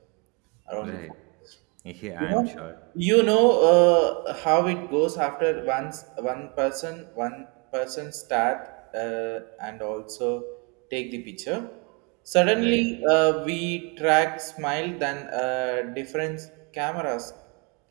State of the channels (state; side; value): quieter; left; 32.6 dB